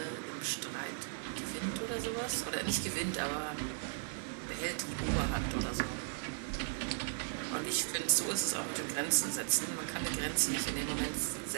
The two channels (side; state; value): left; silent; digital silence